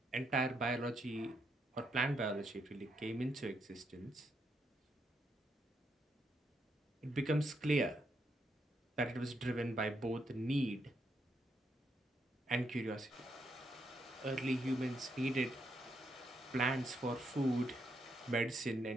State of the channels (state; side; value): normal; both; correlation 0.78